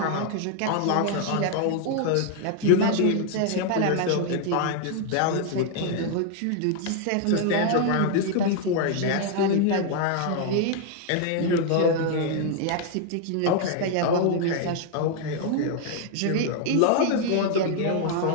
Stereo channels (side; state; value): both; different; correlation 0.00